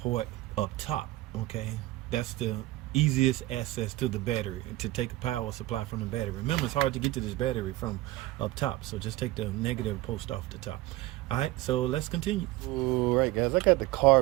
up top, okay? That's the easiest access to the battery, to take a power supply from the battery. Remember, it's hard to get to this battery from up top, so just take the negative post off the top. All right, so let's continue. All right, guys, I got the car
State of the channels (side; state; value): left; quieter; 17.7 dB